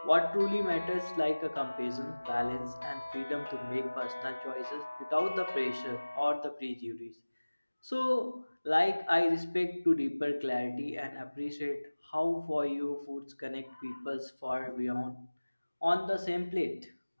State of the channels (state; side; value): inverted; both; correlation -1.00